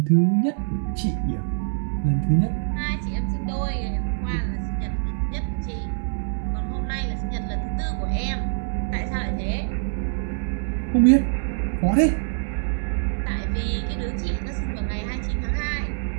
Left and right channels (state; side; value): silent; left; digital silence